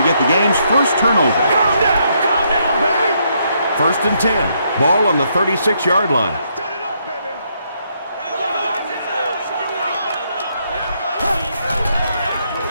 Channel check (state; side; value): inverted; both; correlation -0.74